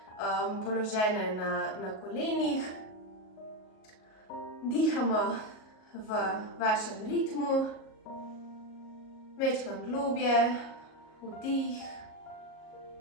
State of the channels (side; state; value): right; late; 37 ms